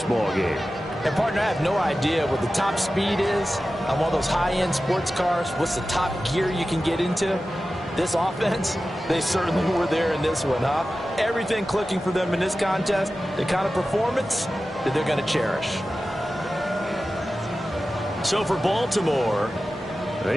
ball game. And partner, I have no idea what the top speed is on one of those high-end sports cars. What's the top gear you can get into? This offense, they certainly were there in this one, huh? Everything clicking for them in this contest, the kind of performance that they're going to cherish. So for Baltimore,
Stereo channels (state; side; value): normal; both; correlation 0.94